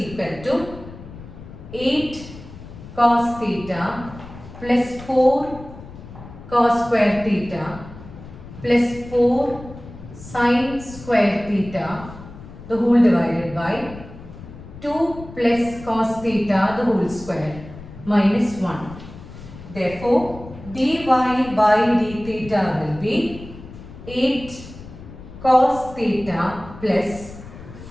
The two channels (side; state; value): left; noise; rumble, 15 dB below the sound